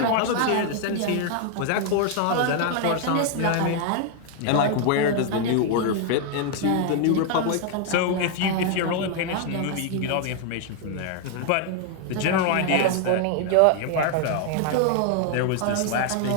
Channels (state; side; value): different; both; correlation 0.00